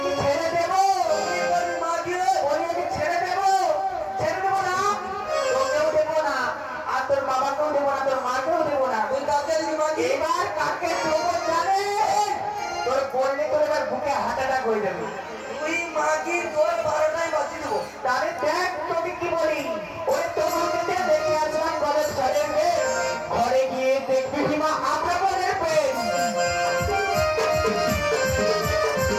কি ছেড়ে দেবো? ওই আমি ছেড়ে দেবো, ছেড়ে দেবো না, তোকেও দেবো না, আর তোর বাবাকেও দেবো না, তোর মাকেও দেবো না। এবার কাকে দেবো জানে? তোর বললে তোর এবার বুকে হার্ট অ্যাটাক হয়ে যাবে। তাহলে দেখ তোকে কি বলি, ওই তোমাকে দেখে আসলাম কলেজ ঘরে ঘরে গিয়ে দেখবি সীমা আমরা বলে পেন।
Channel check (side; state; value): both; identical; correlation 1.00